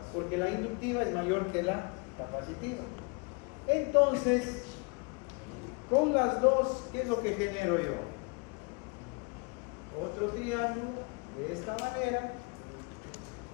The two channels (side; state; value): right; quieter; 31.4 dB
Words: Porque la inductiva es mayor que la capacitiva. Entonces, con las dos, ¿qué es lo que genero yo? Otro triángulo de esta manera.